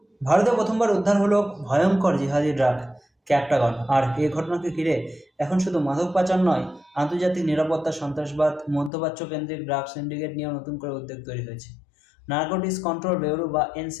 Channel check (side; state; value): right; drops out; at 8.9 s